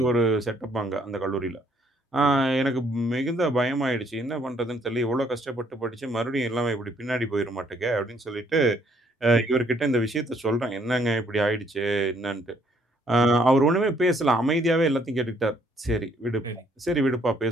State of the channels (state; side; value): normal; both; correlation 0.66